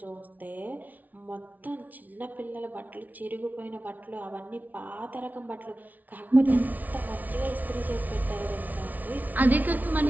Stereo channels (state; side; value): late; left; 0.078 ms